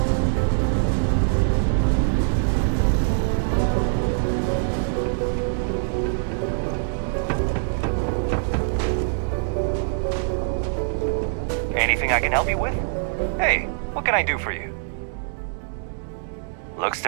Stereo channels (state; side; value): silent; left; 63 dB below the other